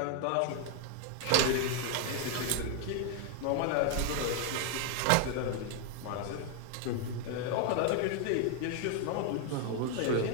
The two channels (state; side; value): different; both; correlation 0.00